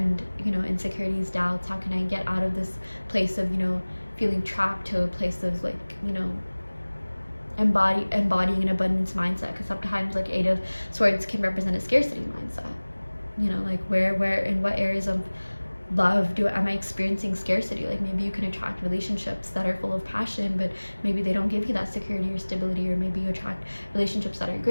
you know, insecurities, doubts? How can I get out of this place of, you know, feeling trapped to a place of, like, you know, embodying an abundance mindset? Because sometimes, like, Eight of Swords can represent a scarcity mindset, you know, like where in what areas of love am I experiencing scarcity? Like, maybe you can attract relationships that are full of passion, but maybe they don't give you that security or stability. Or maybe you attract relationships that are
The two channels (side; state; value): both; inverted; correlation -1.00